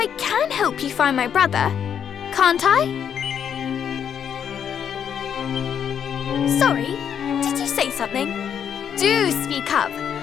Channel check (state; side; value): quieter; right; 8.3 dB